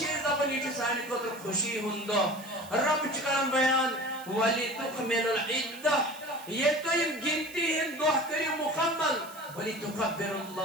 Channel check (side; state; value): right; noise; hiss, 18 dB below the sound